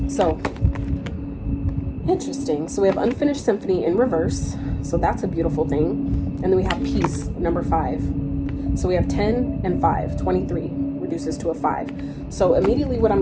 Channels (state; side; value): identical; both; correlation 1.00